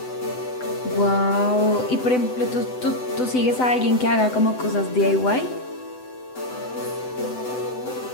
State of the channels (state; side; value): late; right; 7.9 ms